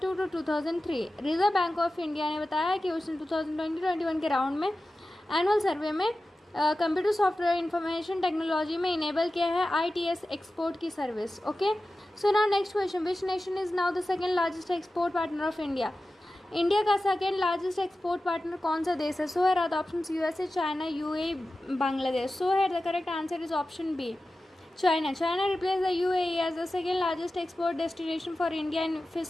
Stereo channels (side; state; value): both; normal; correlation 0.94